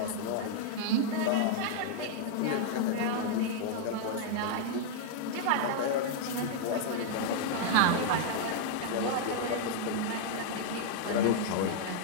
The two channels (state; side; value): different; both; correlation -0.01